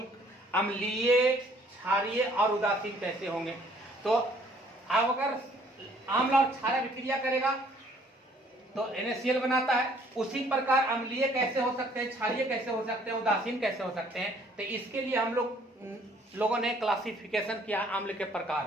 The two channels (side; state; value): both; normal; correlation 0.60